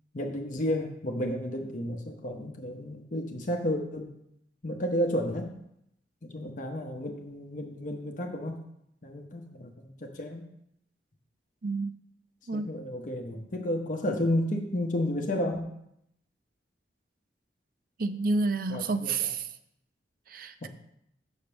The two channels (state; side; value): normal; both; correlation 0.57